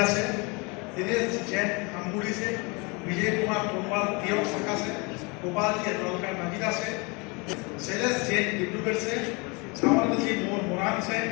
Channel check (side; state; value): right; quieter; 29.2 dB